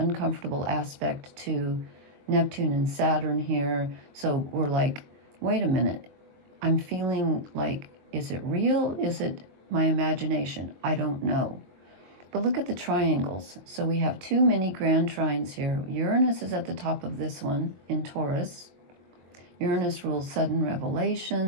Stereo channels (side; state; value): left; late; 22 ms